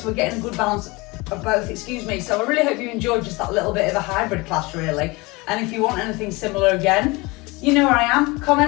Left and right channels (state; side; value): quieter; right; 24.2 dB